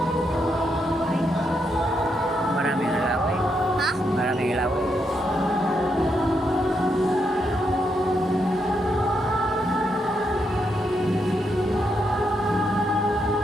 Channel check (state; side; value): normal; both; correlation 0.80